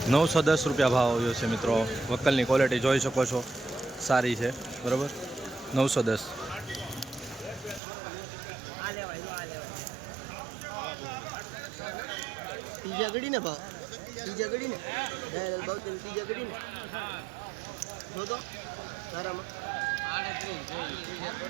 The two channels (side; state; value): left; drops out; at 7.8 s